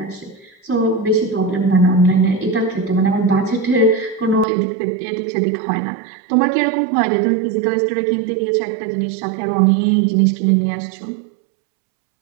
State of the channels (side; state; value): left; drops out; at 4.5 s